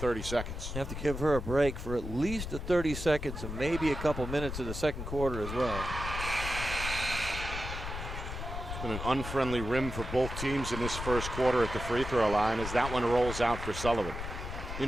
seconds. You have to give her a break for at least the 30 seconds and maybe a couple minutes of the second quarter as well. It's been an unfriendly rim for both teams in this first quarter at the free throw line as that one rolls out for Sullivan.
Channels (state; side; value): noise; left; rumble, 6 dB below the sound